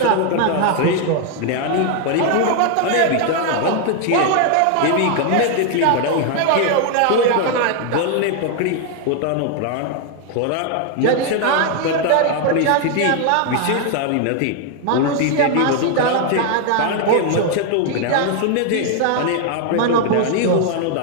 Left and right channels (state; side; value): different; both; correlation 0.00